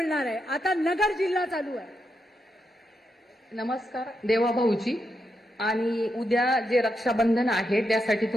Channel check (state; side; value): normal; both; correlation 0.84